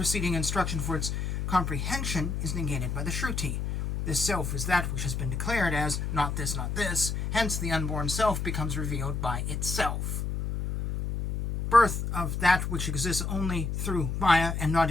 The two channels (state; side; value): noise; left; hum, 2 dB below the sound